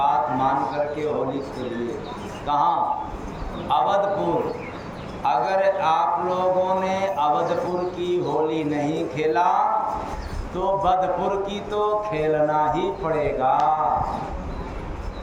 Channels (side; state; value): both; identical; correlation 1.00